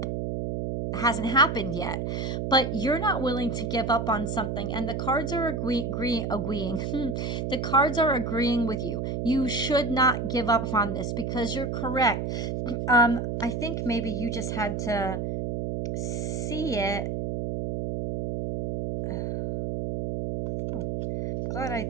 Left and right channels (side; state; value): right; noise; hum, 2 dB below the sound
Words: hasn't happened yet. But you're not willing to give up on something, and the cards are agreeing. The cards are agreeing with you. You should not give up on this, because you're correct. I think maybe you just had to see it. Oh, glad